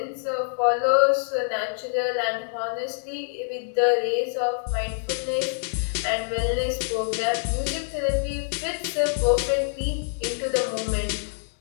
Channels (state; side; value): silent; right; digital silence